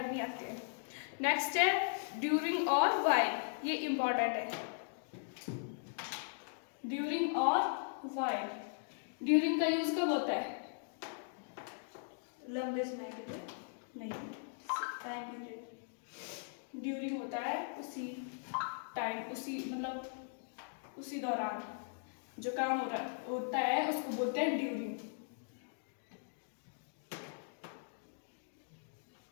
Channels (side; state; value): right; silent; digital silence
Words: नहीं आते हैं। नेक्स्ट है ड्यूरिंग और व्हाइल, ये इंपॉर्टेंट है। ड्यूरिंग और व्हाइल, ड्यूरिंग का यूज कब होता है? लंबे समय के लिए नहीं, टाइम पीरियड। ड्यूरिंग होता है उसी टाइम, उसी मतलब उसी दौरान जो काम होता है उसको बोलते हैं ड्यूरिंग।